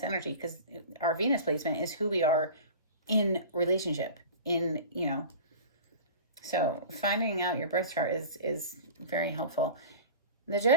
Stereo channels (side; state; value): both; inverted; correlation -0.36